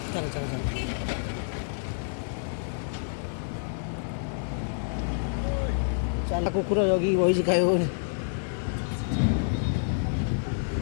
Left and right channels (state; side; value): silent; right; digital silence